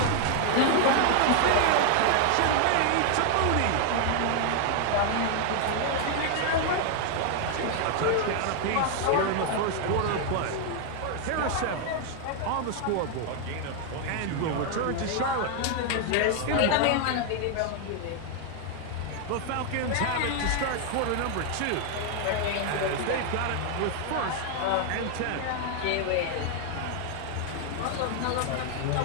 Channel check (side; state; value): both; different; correlation 0.00